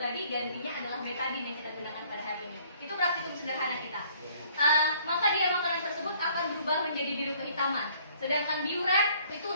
tadi gantinya adalah betadin yang kita gunakan pada hari ini. Itu praktikum sederhana kita. Maka dia makanan tersebut akan berubah menjadi biru kehitaman. Sedangkan biuret itu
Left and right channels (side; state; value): both; inverted; correlation -0.59